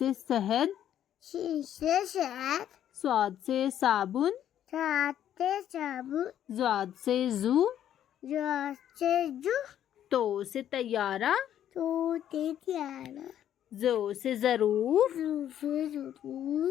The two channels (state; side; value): quieter; right; 10.7 dB